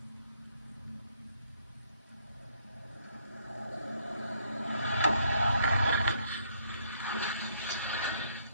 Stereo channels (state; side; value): inverted; both; correlation -0.68